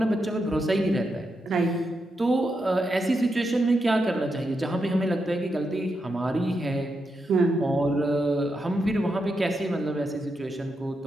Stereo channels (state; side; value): normal; both; correlation 0.85